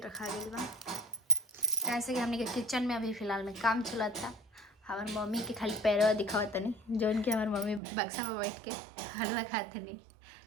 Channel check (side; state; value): left; drops out; at 7.8 s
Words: गया बा, कैसे कि हमने के किचन में अभी फ़िलहाल में काम चला था। हमारे मम्मी के खाली पैरवा दिखावत नहीं, जो उनके हमारे मम्मी बक्सा में बैठ के हलवा खाते नहीं,